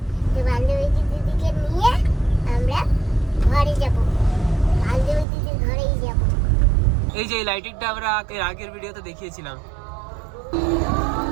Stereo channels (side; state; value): left; drops out; at 5.2 s